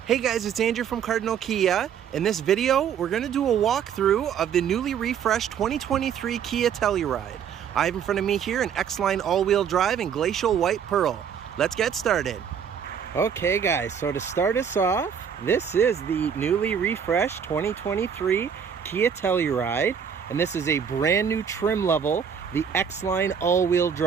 Hey guys, it's Andrew from Cardinal Kia. In this video, we're going to do a walkthrough of the newly refreshed 2023 Kia Telluride. I have in front of me here an X-Line all-wheel drive in glacial white pearl. Let's get started. Okay guys, so to start us off, this is the newly refreshed 2023 Kia Telluride, and this is a brand new trim level, the X-Line all-wheel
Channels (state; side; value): quieter; left; 7.7 dB